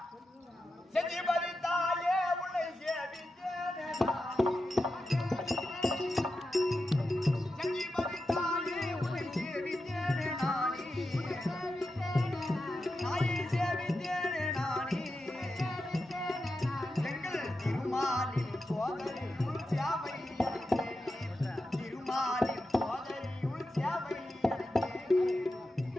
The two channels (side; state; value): both; normal; correlation 0.89